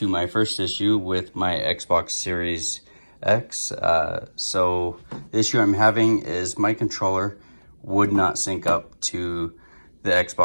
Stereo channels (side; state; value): both; inverted; correlation -1.00